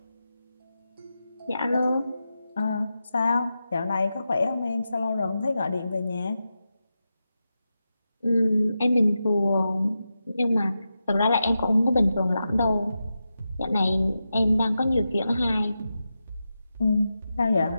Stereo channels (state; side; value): inverted; both; correlation -0.90